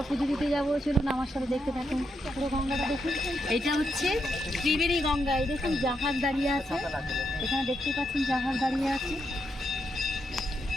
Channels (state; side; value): normal; both; correlation 0.81